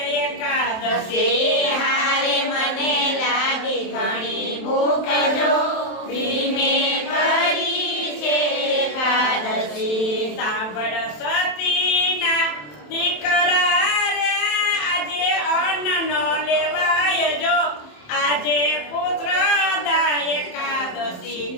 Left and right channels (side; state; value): right; late; 27 ms